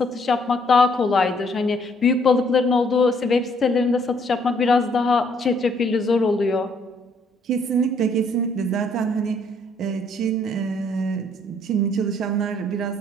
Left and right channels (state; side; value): normal; both; correlation 0.66